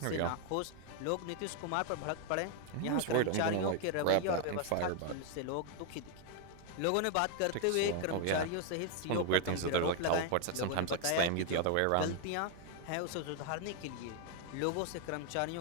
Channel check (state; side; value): different; both; correlation 0.00